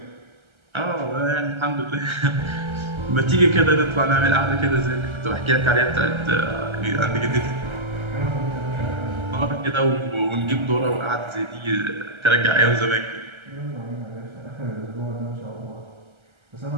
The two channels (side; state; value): left; late; 1.3 ms